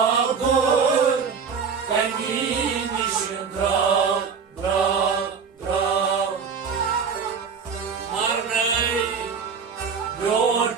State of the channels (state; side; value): quieter; left; 6.0 dB